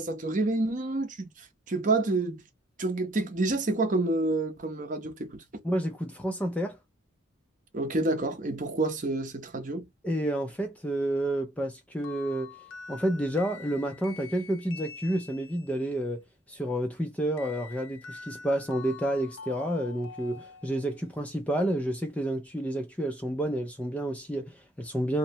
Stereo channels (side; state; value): both; normal; correlation 0.67